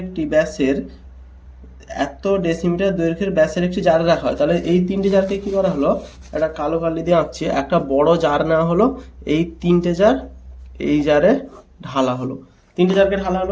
একটি ব্যাসের একটি জারে রাখা হয়, তাহলে এই তিনটি জারকে কি করা হলো, একটা কালো কালি দিয়ে আঁকছি, একটা বড় জার নেওয়া হলো, এই তিনটে জার এই জারে ঢালা হলো, তিনটে জারকে ঢালা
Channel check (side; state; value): both; identical; correlation 1.00